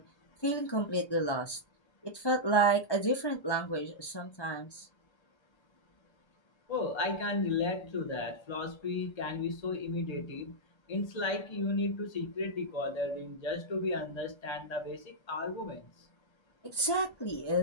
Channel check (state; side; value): late; right; 1.3 ms